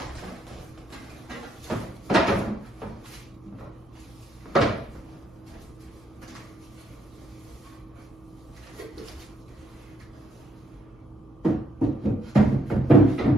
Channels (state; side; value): normal; both; correlation 0.73